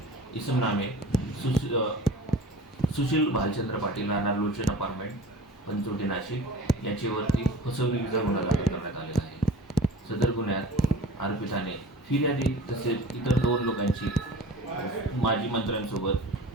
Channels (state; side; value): normal; both; correlation 0.40